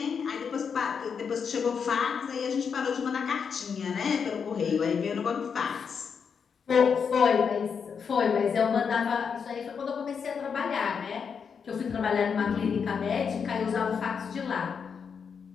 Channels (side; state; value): right; quieter; 6.4 dB